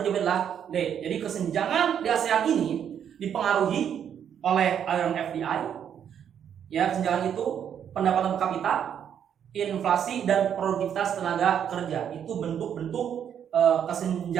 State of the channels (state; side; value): quieter; left; 8.8 dB